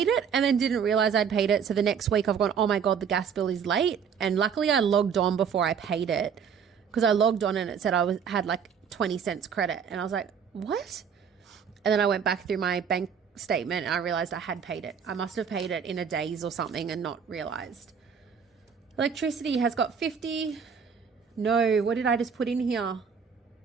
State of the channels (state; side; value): quieter; left; 6.9 dB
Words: it and then didn't realize I'd paid it. So the next week I've gone, oh my God, the gas bill is late. And luckily I logged on before I paid it because I logged on and it said had like 20 cents credit. And I was like, what? And then I went back through my bank statement and I realized I had paid it. I must have paid it in a days or something and not realized. Electricity has got 50. No, what did I just put in here?